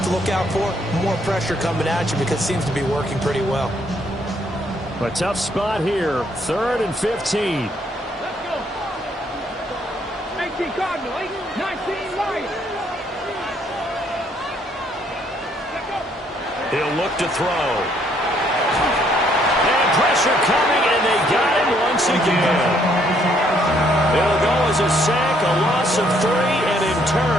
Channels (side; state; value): both; normal; correlation 0.68